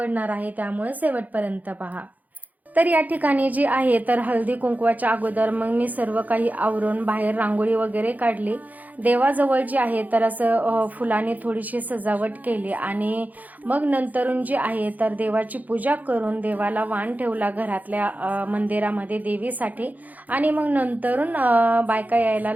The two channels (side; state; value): left; late; 0.080 ms